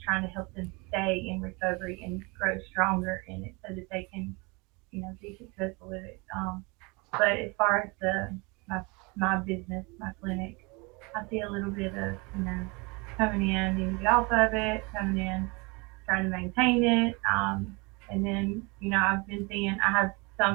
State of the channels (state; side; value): quieter; left; 28.1 dB